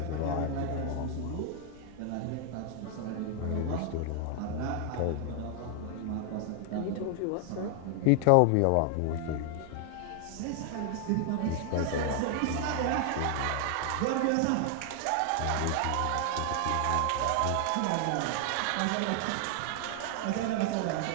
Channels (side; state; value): both; different; correlation 0.00